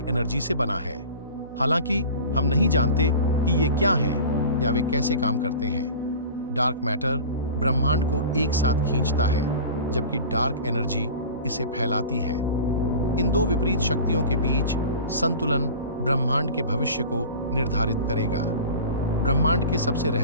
एनर्जी से बना है। हालांकि हम नहीं जानते कि ये क्या हैं या वे कैसे काम करते हैं। डार्क मैटर ब्रह्मांड को एक साथ खींचता है, जबकि डार्क एनर्जी इसे फैलाती है। इन दो विपरीत शक्तियों के बीच संतुलन ब्रह्मांड के भविष्य को निर्धारित करेगा। ब्रह्मांड के सबसे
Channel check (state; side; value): inverted; both; correlation -0.37